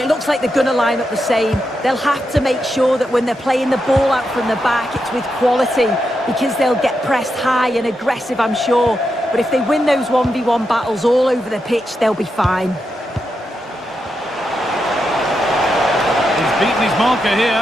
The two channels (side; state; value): both; normal; correlation 0.85